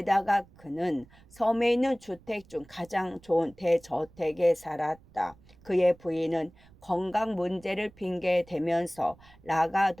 그는 섬에 있는 주택 중 가장 좋은 대저택에 살았다. 그의 부인은 건강 문제를 핑계대면서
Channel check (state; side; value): noise; right; rumble, 26 dB below the sound